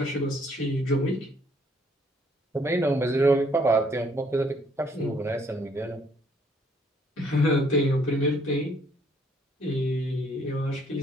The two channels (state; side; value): normal; both; correlation 0.65